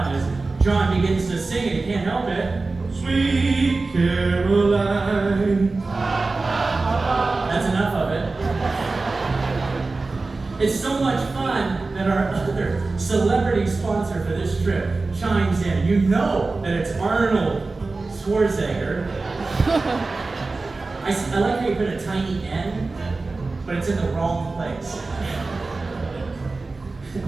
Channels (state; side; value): quieter; left; 3.6 dB